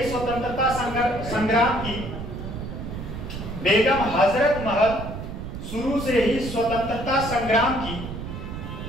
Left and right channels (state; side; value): noise; right; rumble, 8 dB below the sound